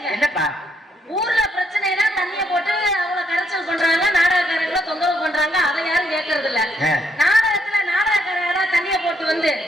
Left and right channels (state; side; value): normal; both; correlation 0.73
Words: என்னப்பா? ஊர்ல பிரச்சனைனா தண்ணிய போட்டு அவங்கள கரைச்சல் பண்றாங்க, நாடகக்காரங்களை தொந்தரவு பண்றாங்க. அதை யாரும் கேட்கறது இல்ல. நாடகத்துல நாடகக்காரங்க தண்ணிய போட்டு வந்து